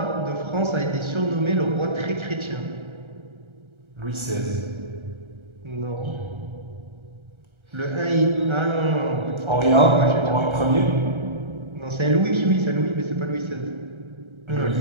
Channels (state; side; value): late; left; 1.3 ms